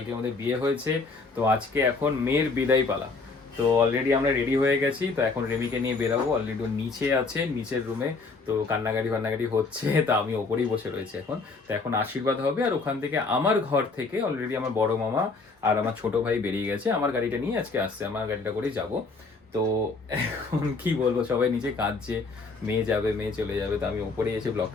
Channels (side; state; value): right; quieter; 4.0 dB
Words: আমাদের বিয়ে হয়েছে, তো আজকে এখন মেয়ের বিদায় পালা। তো অলরেডি আমরা রেডি হয়ে গেছি, তো এখন রেমিকে নিয়ে বেরাবো। অলরেডি নিচে আছে, নিচের রুমে, তো কান্নাকাটি হচ্ছে, তা আমি ওপরেই বসে রয়েছি এখন। তো এখন আশীর্বাদ হবে, আর ওখান থেকে আমার ঘর থেকে অলরেডি আমার বড় মামা আর আমার ছোট ভাই বেরিয়ে গেছে। আমার গাড়িটা নিয়ে আজকে আসছে, আমার গাড়িটা করেই যাবো। তো এখন কি বলবো, সবাই নিচে কাঁদছে, মেয়ে যাবে, মেয়ে চলে যাবে। তো আমি ওপরে এসে